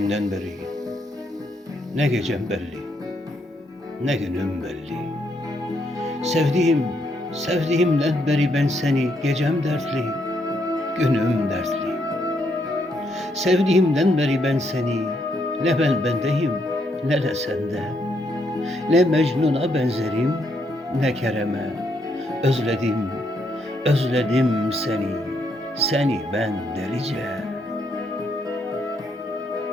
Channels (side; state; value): both; normal; correlation 0.75